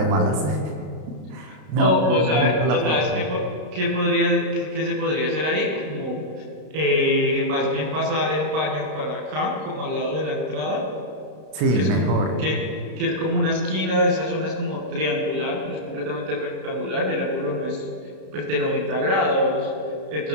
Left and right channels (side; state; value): left; late; 32 ms